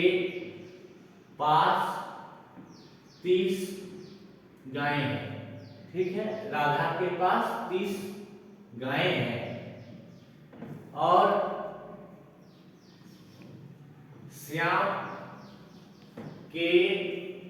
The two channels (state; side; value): identical; both; correlation 1.00